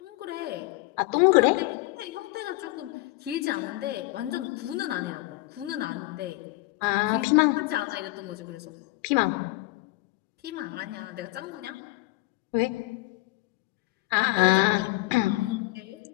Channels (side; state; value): right; quieter; 20.5 dB